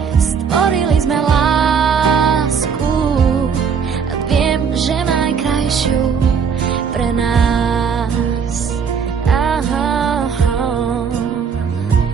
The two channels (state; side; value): quieter; left; 6.5 dB